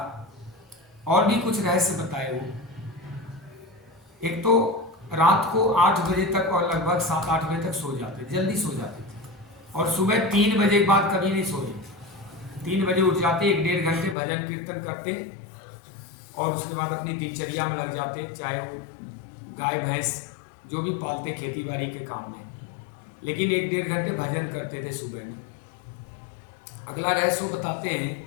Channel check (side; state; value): right; drops out; at 14.2 s